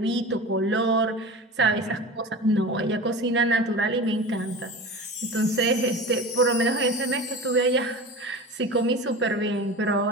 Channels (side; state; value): both; normal; correlation 0.32